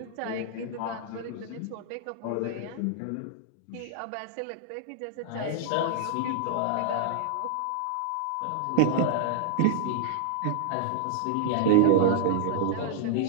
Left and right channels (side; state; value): both; different; correlation -0.01